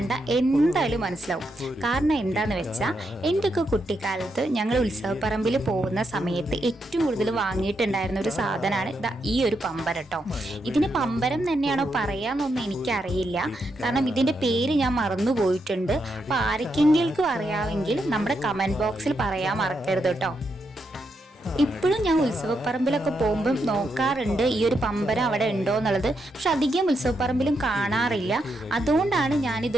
എന്തായാലും മനസ്സിലാവും. കാരണം എന്താന്ന് വെച്ചാൽ എൻ്റെയൊക്കെ കുട്ടിക്കാലത്ത് ഞങ്ങൾ ഉത്സവപ്പറമ്പിൽ പോകുന്ന സമയത്ത് ഏറ്റവും കൂടുതൽ വാങ്ങിയിട്ടുണ്ടായിരുന്ന ഒരു സാധനമാണ് ഈ ഒരു പമ്പരം കേട്ടോ. ഇതിന് പമ്പരം തന്നെയാണോ പറയാന്നൊന്നും എനിക്കറിയില്ല, കാരണം ഇതിൻ്റെ പേര് ഞാൻ മറന്നു പോയിട്ടുണ്ട്. അപ്പോൾ ആർക്കെങ്കിലും അറിയാമെങ്കിൽ നമ്മുടെ കമൻറ്റ് ബോക്സിൽ പറയാൻ മറക്കരുത് കേട്ടോ. ഇപ്പോഴും ഞാൻ ഉത്സവപ്പറമ്പിലൊക്കെ പോകുമ്പം നോക്കാറുണ്ട് ഈ ഒരു പമ്പരം അവിടെ ഉണ്ടോ എന്നുള്ളത്. പക്ഷെ അധികം ഉത്സവപ്പറമ്പിലും കാണാറില്ല. അതുകൊണ്ടാണ്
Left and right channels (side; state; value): both; normal; correlation 0.82